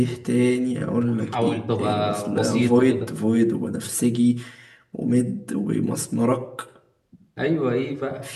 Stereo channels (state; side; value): identical; both; correlation 1.00